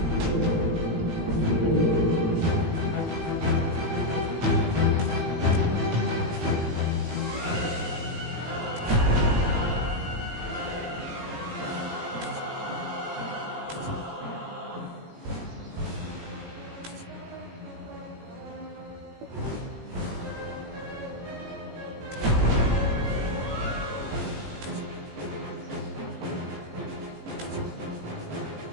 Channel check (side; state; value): left; late; 18 ms